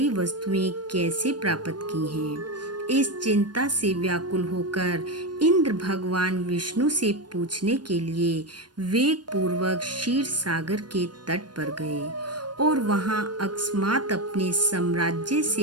वस्तुएं कैसे प्राप्त की हैं? इस चिंता से व्याकुल होकर इंद्र भगवान विष्णु से पूछने के लिए वेग पूर्वक क्षीर सागर के तट पर गए और वहां अकस्मात अपने साम्राज्य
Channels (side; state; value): left; late; 0.70 ms